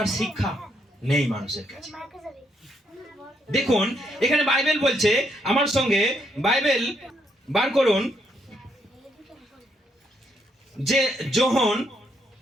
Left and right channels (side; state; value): both; normal; correlation 0.75